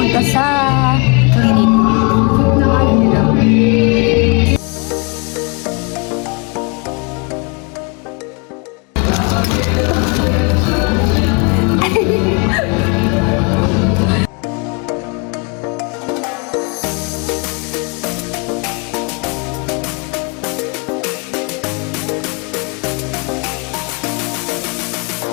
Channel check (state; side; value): quieter; right; 32.3 dB